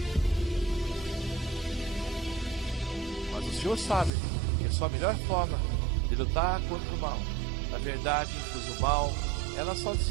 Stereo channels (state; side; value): drops out; left; at 4.1 s